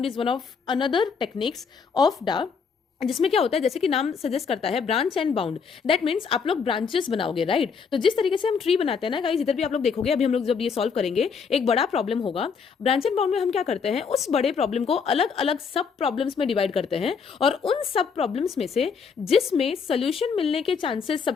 is one of another techniques of डा, जिसमें क्या होता है, जैसे कि नाम सजेस्ट करता है branch and bound, that means आप लोग ब्रांचेस बनाओगे, राइट। तो जिस तरीके से हम ट्री बनाते हैं ना गाइस, इधर भी आप लोग देखोगे, अभी हम लोग जब ये सॉल्व करेंगे एक बड़ा प्रॉब्लम होगा, ब्रांच एंड बाउंड में हम क्या करते हैं, उस बड़े प्रॉब्लम को अलग अलग सब प्रॉब्लम्स में डिवाइड करते हैं, और उन सब प्रॉब्लम्स में से जिसमें सोल्यूशन मिलने के चांसेस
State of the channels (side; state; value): right; quieter; 5.9 dB